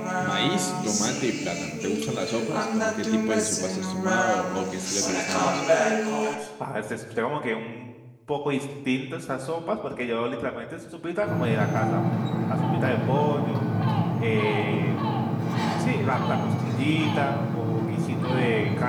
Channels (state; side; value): identical; both; correlation 1.00